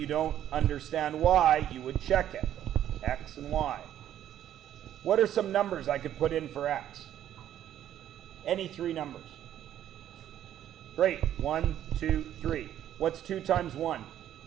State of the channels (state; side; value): quieter; left; 11.3 dB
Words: don't understand why, you would check it. X and Y. What are some numbers I could put in for X? Any three numbers. Great. 1, 2, 3. What's 2 times 1?